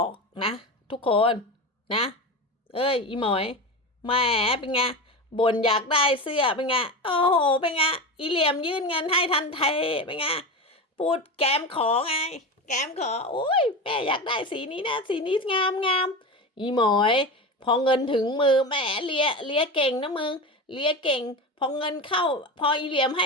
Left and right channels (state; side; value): normal; both; correlation 0.23